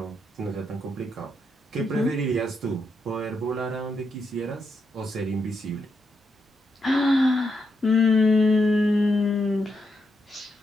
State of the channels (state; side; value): normal; both; correlation 0.82